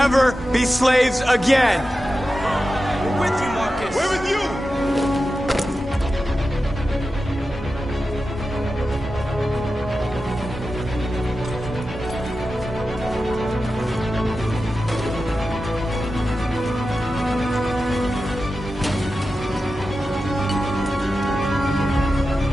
be slaves again! We're with you, Marcus! We're with you!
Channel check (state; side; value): normal; both; correlation 0.92